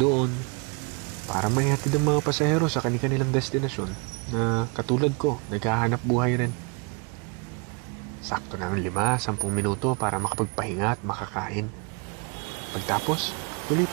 Para maihatid ang mga pasahero sa kanilang destinasyon na katulad ko, naghahanap buhay rin. Sakto na ng 5-10 minuto para makapagpahinga at makakain. Pagtapos, tuloy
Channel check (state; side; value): quieter; left; 33.5 dB